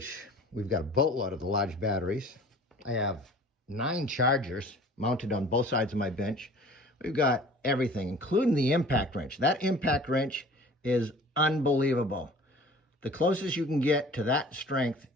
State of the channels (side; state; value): both; normal; correlation 0.46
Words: we've got a boatload of the large batteries. I have 9 chargers mounted on both sides of my bench. We've got everything, including the impact wrench. That impact wrench is unbelievable. The closest you can get to that strength